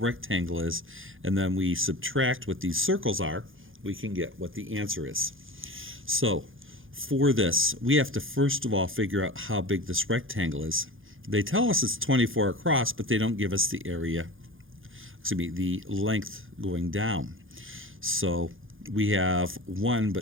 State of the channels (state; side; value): late; left; 0.58 ms